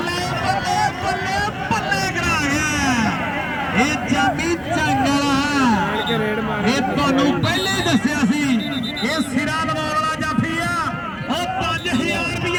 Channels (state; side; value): identical; both; correlation 1.00